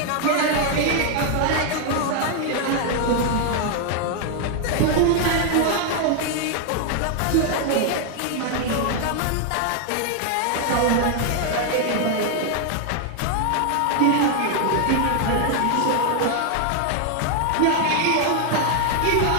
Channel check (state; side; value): different; both; correlation 0.00